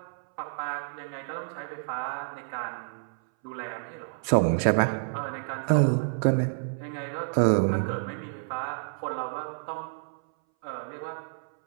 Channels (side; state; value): left; silent; 58 dB below the other